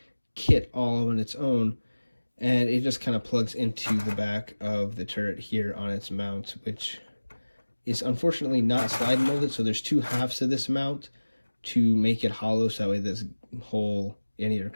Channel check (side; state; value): both; inverted; correlation -1.00